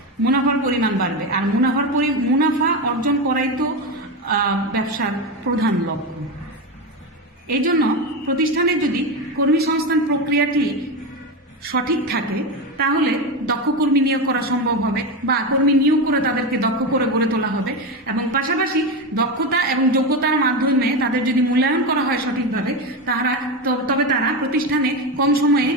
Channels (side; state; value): both; normal; correlation 0.16